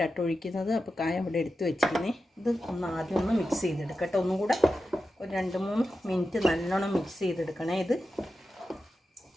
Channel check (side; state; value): both; normal; correlation 0.91